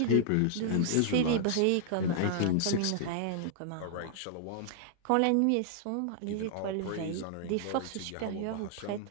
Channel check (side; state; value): both; different; correlation -0.01